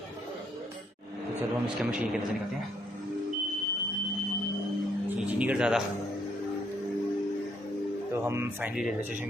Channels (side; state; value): both; normal; correlation 0.71